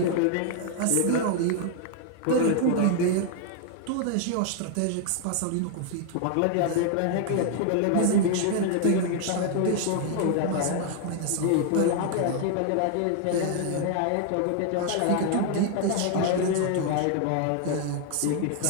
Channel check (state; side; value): different; both; correlation 0.00